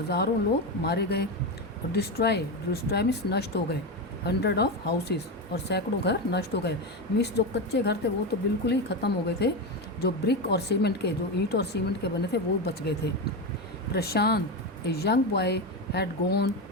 लोग मारे गए और डिस्ट्रॉय मीन्स नष्ट हो गए, 100 ऑफ हाउसेस और सैकड़ों घर नष्ट हो गए। मीन्स जो कच्चे घर थे वो तो बिल्कुल ही ख़त्म हो गए थे, जो ब्रिक और सीमेंट के, जो ईंट और सीमेंट के बने थे वो बच गए थे। Prashant, a young boy, had gone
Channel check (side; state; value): both; normal; correlation 0.15